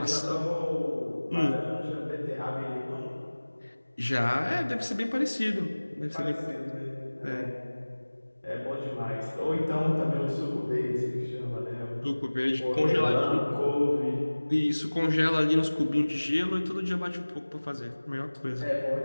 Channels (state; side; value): inverted; both; correlation -1.00